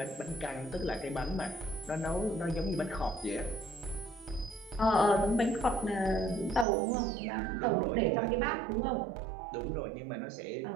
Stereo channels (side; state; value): left; drops out; at 6.7 s